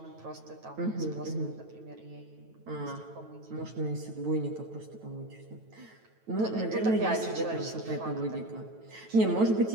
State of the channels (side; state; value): left; late; 9.1 ms